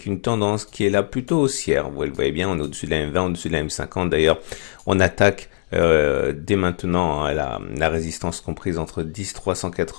une tendance qui est là plutôt haussière. Vous le voyez bien, on est au-dessus de la M20, au-dessus de la M50. D'ailleurs, on attaque dès maintenant la résistance comprise entre 10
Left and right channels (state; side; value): silent; right; digital silence